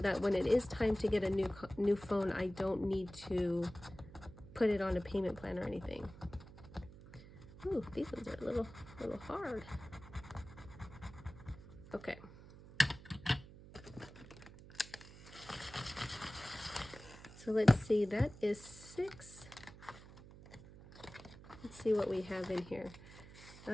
when it is time to get a new phone, I don't need to put it on a payment plan or anything. Ooh, these ones are a little hard. Okay. So let's see, that is 6. Let's see what we have in here.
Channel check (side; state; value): right; noise; hum, 17 dB below the sound